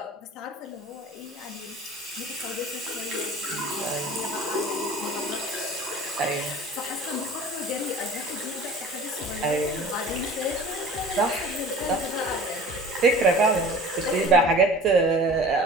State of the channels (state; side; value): normal; both; correlation 0.42